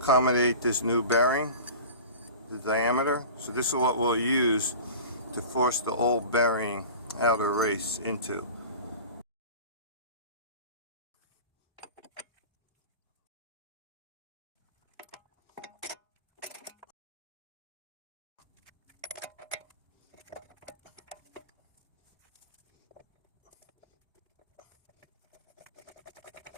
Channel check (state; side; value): inverted; both; correlation -0.36